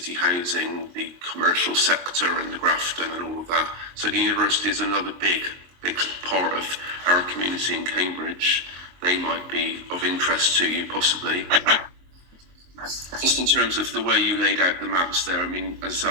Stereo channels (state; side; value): late; left; 22 ms